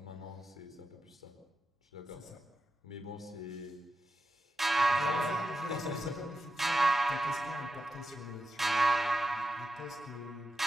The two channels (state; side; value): normal; both; correlation 0.89